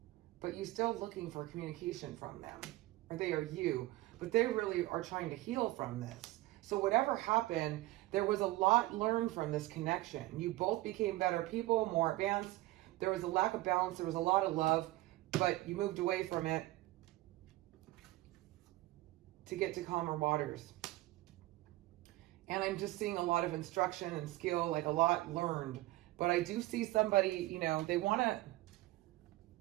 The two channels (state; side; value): quieter; left; 18.3 dB